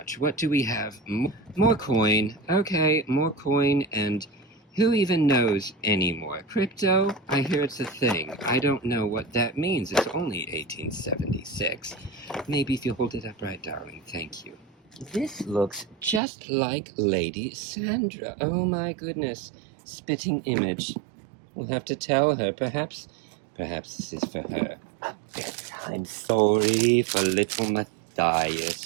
What do we have? More coin. Okay, more coin, and who even knows anymore? Crypto? I hear it's a thing. I don't know what that means. It's only 1876. Maybe if you hold it up right, darling. Thank you. This looks just like Lady Sandra. Oh my goodness. Spitting image. We'll have to tell her. Perhaps this is for her. A bedtime story for little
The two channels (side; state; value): left; drops out; at 16.2 s